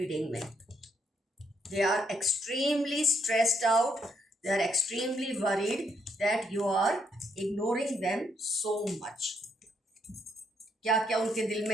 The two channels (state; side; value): normal; both; correlation 0.74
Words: में। They are extremely stressed out, they are extremely worried that you are ignoring them so much. क्या क्या उनके दिल